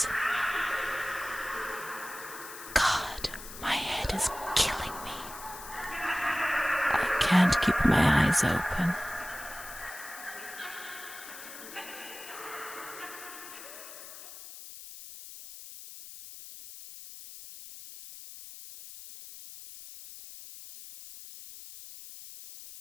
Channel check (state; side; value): noise; left; hiss, 13 dB below the sound